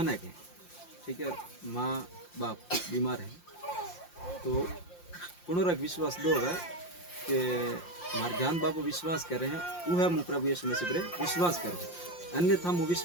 ना के ठीक है, माँ बाप बीमार है तो पुनरक विश्वास दोगा कि मार ज्ञान बापू विश्वास कर रहे हैं वो है, मुँह प्रभु यीशु मसीह पर विश्वास करो, अन्यथा मुँह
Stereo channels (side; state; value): right; late; 5.7 ms